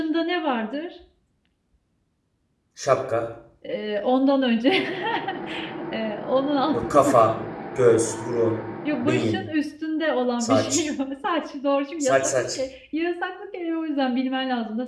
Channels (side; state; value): both; identical; correlation 1.00